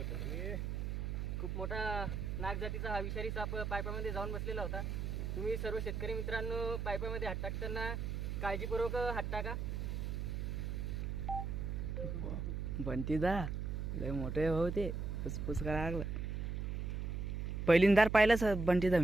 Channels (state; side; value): noise; right; hum, 2 dB below the sound